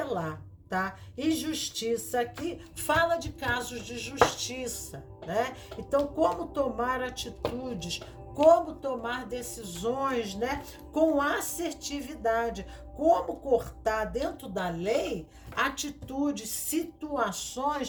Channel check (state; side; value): identical; both; correlation 1.00